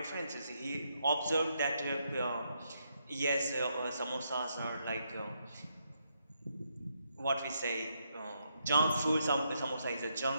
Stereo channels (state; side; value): inverted; both; correlation -0.78